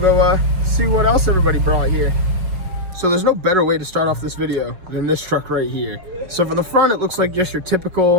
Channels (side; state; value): left; late; 5.2 ms